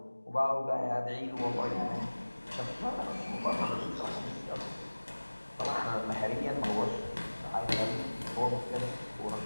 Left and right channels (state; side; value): inverted; both; correlation -1.00